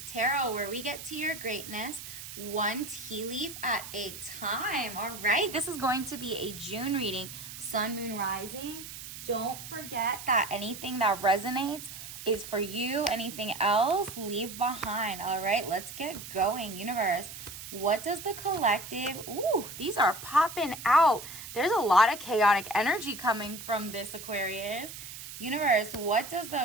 where we get to your greatness one tea leaf at a time. All right, this is going to be a June reading, Sun, Moon, Rising. Don't forget that anything that resonates is for you. Anything else, leave behind. All right, let's get going. Universe, what does the collective... Ooh, these are popping out. There's a lot of chaotic energy coming from this Aquarius. Universe, what does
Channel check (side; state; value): right; noise; hiss, 11 dB below the sound